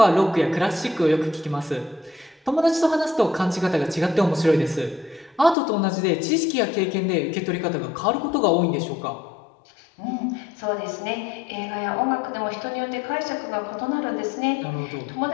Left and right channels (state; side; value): drops out; right; at 5.6 s